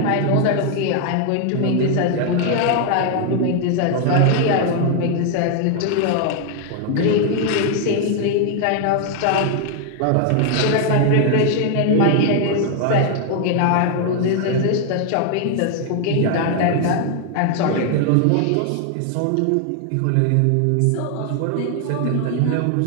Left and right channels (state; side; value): different; both; correlation 0.00